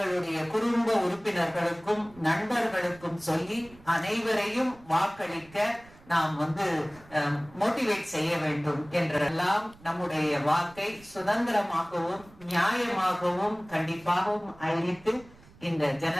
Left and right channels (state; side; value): noise; right; rumble, 24 dB below the sound